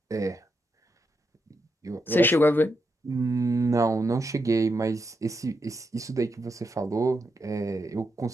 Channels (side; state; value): both; normal; correlation 0.84